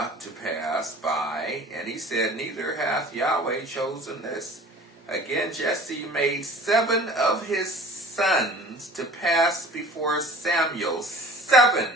to pass by, and he said, Neither hath Yahweh chosen this. Again Jesse made 7 of his sons to pass before Samuel,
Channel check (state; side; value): normal; both; correlation 0.45